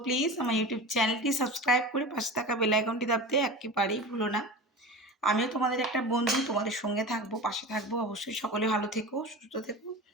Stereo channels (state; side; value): normal; both; correlation 0.31